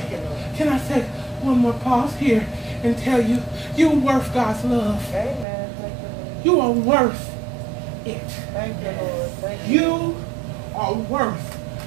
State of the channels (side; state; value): left; drops out; at 5.5 s